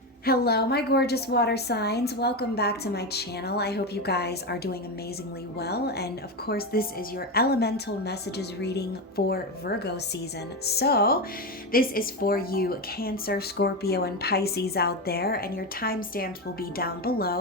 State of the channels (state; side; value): normal; both; correlation 0.15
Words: Hello, my gorgeous water signs. Welcome back to my channel. I hope you guys are doing amazingly well. And of course, this is your elemental messages reading for Virgo season. So, this is for you, Cancer, Scorpio, and Pisces out there. And your timestamps will be down